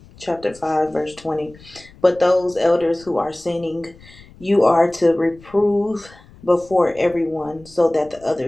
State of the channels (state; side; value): noise; left; rumble, 24 dB below the sound